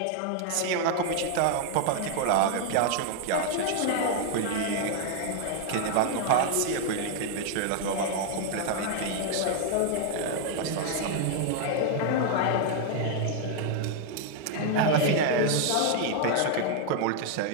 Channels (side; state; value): both; different; correlation 0.00